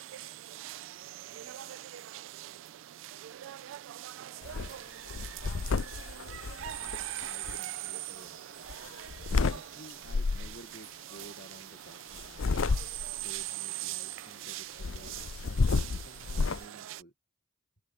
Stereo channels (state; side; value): normal; both; correlation 0.60